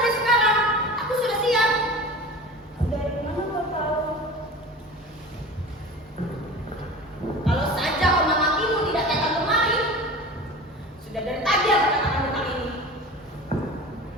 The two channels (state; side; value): normal; both; correlation 0.35